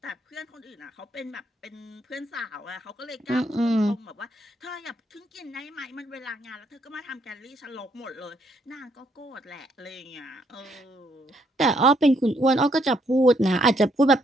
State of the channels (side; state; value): both; normal; correlation 0.72